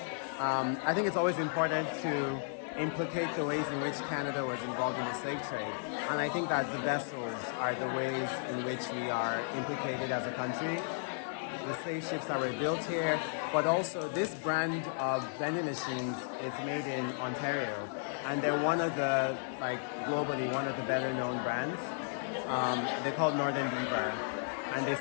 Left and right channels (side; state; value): right; silent; digital silence